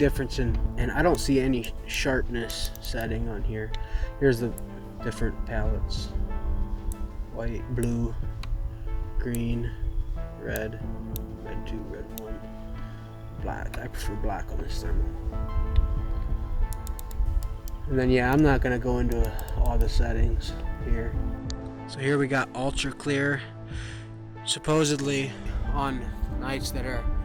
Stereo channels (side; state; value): both; identical; correlation 1.00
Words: and I don't see any sharpness setting on here. Here's the different palettes. White, blue, green, red, red 2, red 1, black. I prefer black on this thermal. And then yeah, I'm not gonna go into all the settings here. So here we got ultra clear. Supposedly on nights that are,